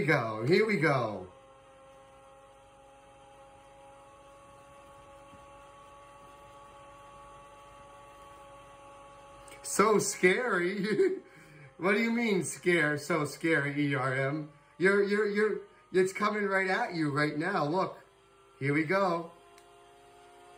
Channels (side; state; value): both; identical; correlation 1.00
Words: go. Here we go. So scary. What do you mean so scary, ERM? It's coming right at you right now. Look. Here we go.